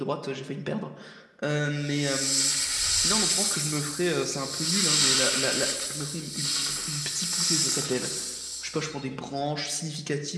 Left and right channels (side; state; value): both; identical; correlation 1.00